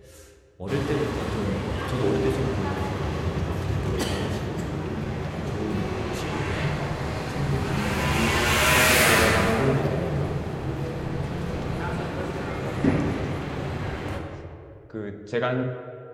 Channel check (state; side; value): identical; both; correlation 1.00